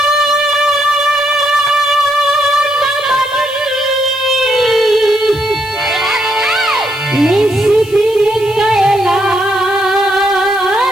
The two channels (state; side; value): noise; left; hiss, 20 dB below the sound